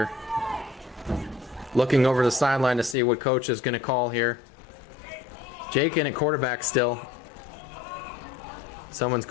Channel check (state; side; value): drops out; right; at 3.0 s